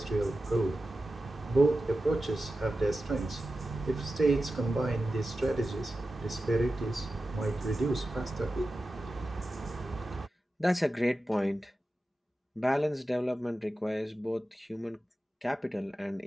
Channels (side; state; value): both; normal; correlation 0.93